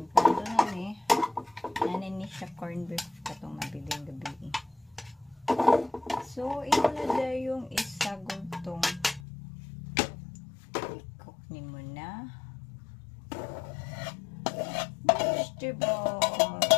na ni. Nanin siya corned beef katong nabiling gabi. So, ito na dahil yung isa gultong i-cook ni mo na vegetable.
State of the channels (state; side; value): drops out; right; at 9.2 s